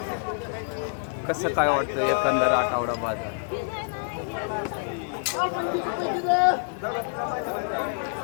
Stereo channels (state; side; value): silent; right; digital silence